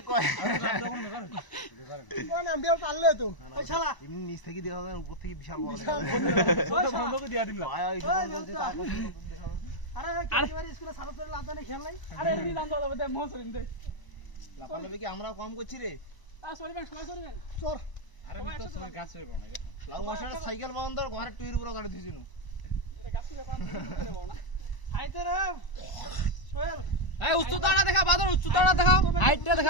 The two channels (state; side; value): late; right; 1.0 ms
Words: কয় কোন নাম বিয়ার পারলে তো ওই শালা এমনি নিচ থেকে দেখা যায় উপর থেকে বিশাল বড় ওই বন্ধকে দিয়া দিলাম ভাই ওই বলতে তারপর আরে কেবারে স্কুলে সারা করে লাভ জানে খেল নাই আরে এমনি বান্ধ হবে দে মোহ সরিন দে লাফালাফি কি আমরাও কম করছি রে আ সরি ভাই সরি ভাই সর আরে আমি তো সব গাছ হইব না লাউ মাছটা সাইকেল বন্ধ ঘরে টুইর উপরে গাড়ি দিছিনু এটা গাছ থেকে বান্ধ করে বল না আইতে রে সোহেল এই উচ্চতাটা দেখা বাদর উচ্চতাটা দেখাও হাইটটা